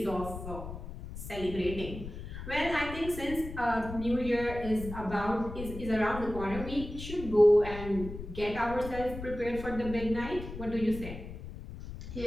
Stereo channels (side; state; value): left; noise; rumble, 10 dB below the sound